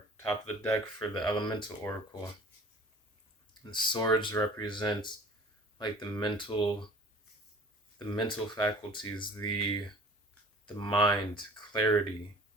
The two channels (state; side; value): normal; both; correlation 0.46